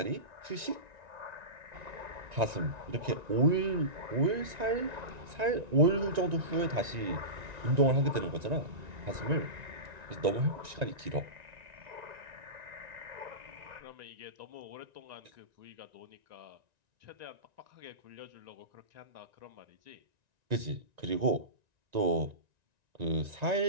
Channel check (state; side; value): late; left; 1.9 ms